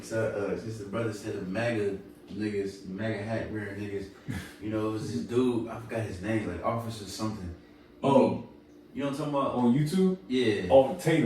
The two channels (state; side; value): identical; both; correlation 1.00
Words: since the brother said the MAGA niggas, MAGA hat wearing niggas, you know, it was this dude, I forgot his name, like Officer something. Oh. You know what I'm talking about? On YouTube? Yeah. Oh,